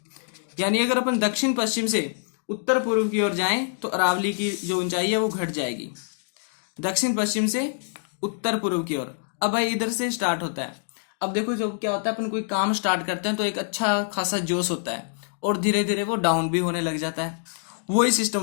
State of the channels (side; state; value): right; silent; digital silence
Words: यानी अगर अपन दक्षिण पश्चिम से उत्तर पूर्व की ओर जाएं तो अरावली की जो ऊंचाई है वो घट जाएगी। दक्षिण पश्चिम से उत्तर पूर्व की ओर। अब भाई इधर से स्टार्ट होता है। अब देखो जब क्या होता है, अपन कोई काम स्टार्ट करते हैं तो एक अच्छा खासा जोश होता है और धीरे धीरे वो डाउन भी होने लग जाता है। वही सिस्टम